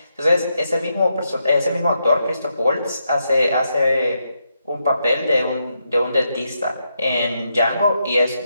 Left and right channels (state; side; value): inverted; both; correlation -0.82